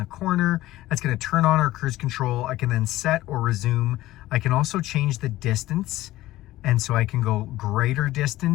corner, that's going to turn on our cruise control. I can then set or resume. I can also change the distance. And so I can go greater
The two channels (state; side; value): quieter; right; 16.2 dB